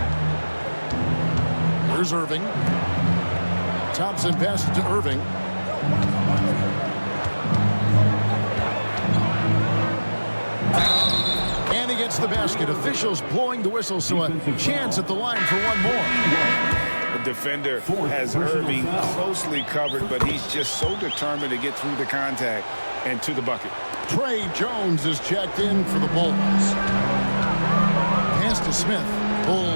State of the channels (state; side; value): inverted; both; correlation -1.00